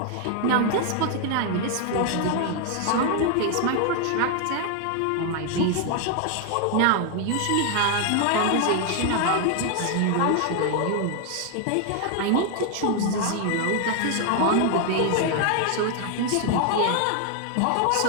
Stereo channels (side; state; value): both; different; correlation 0.00